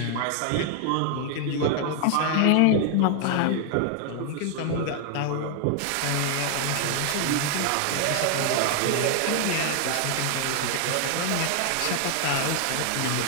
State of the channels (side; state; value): both; different; correlation 0.00